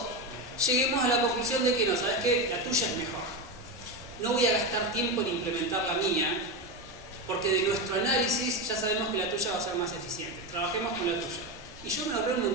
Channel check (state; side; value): noise; left; hum, 28 dB below the sound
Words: lleguemos a la conclusión de que no, ¿sabes qué? La tuya es mejor. No voy a gastar tiempo en implementar la mía, porque de nuestro análisis ya sabemos que la tuya va a ser más eficiente. Trabajemos con la tuya. Y yo me ahorré un